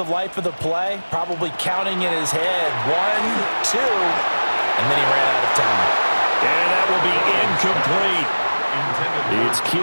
life of the play, probably counting in his head 1, 2, and then he ran out of time. And that will be incomplete. It's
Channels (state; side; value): inverted; both; correlation -1.00